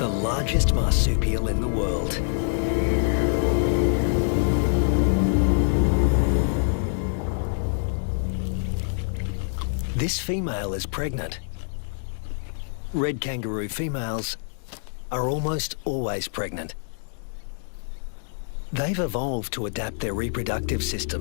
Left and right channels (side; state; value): right; silent; digital silence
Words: largest marsupial in the world. This female is pregnant. Red kangaroo females are almost always pregnant. They've evolved to adapt their reproductive